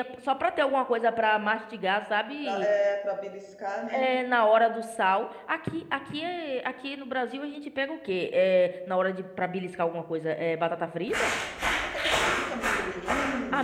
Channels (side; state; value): both; identical; correlation 1.00